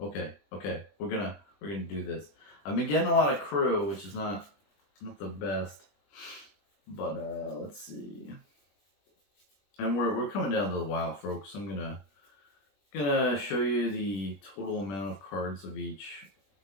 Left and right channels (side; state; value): right; late; 21 ms